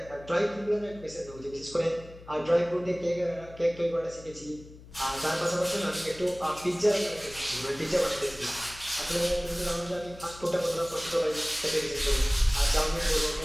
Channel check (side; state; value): left; noise; hum, 19 dB below the sound